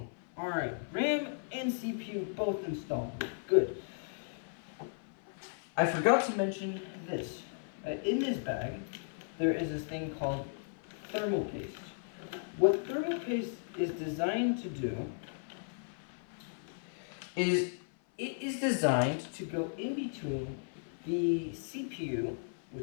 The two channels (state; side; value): silent; right; 54 dB below the other